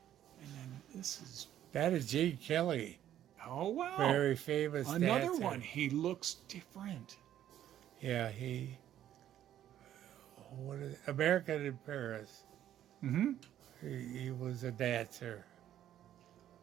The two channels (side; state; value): left; quieter; 11.5 dB